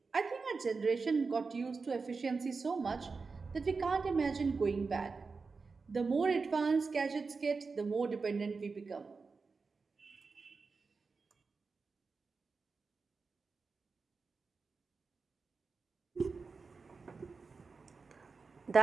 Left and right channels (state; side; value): quieter; left; 4.5 dB